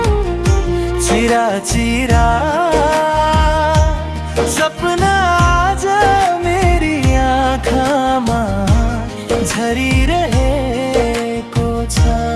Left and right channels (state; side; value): identical; both; correlation 1.00